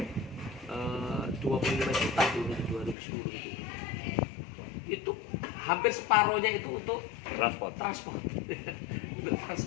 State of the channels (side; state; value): right; drops out; at 3.0 s